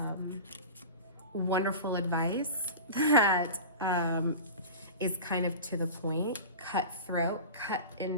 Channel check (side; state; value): both; inverted; correlation -0.31